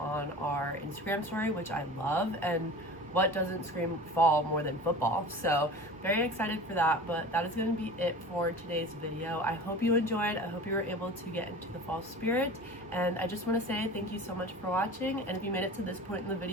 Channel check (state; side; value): normal; both; correlation 0.37